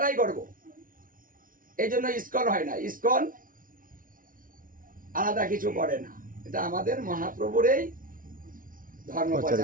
করব। এই জন্য ইসকন হয় না, ইসকন আলাদা কিছু করে না, এটা আমাদের মহাপ্রভুর এই ধর্ম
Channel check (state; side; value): late; left; 0.40 ms